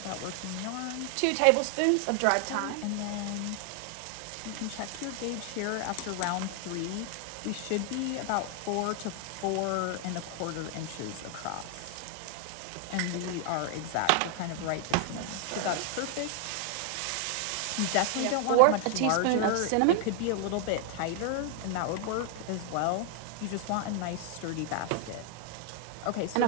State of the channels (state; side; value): different; both; correlation 0.00